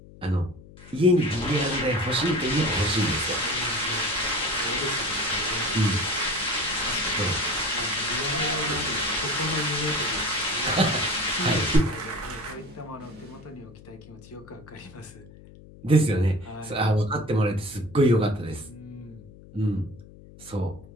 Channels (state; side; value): noise; left; hum, 20 dB below the sound